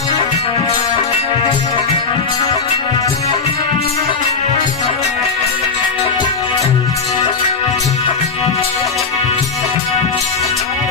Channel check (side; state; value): right; quieter; 4.8 dB